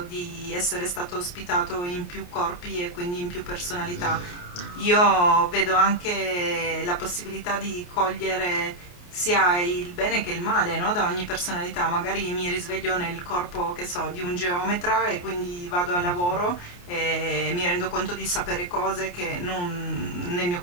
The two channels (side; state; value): right; late; 28 ms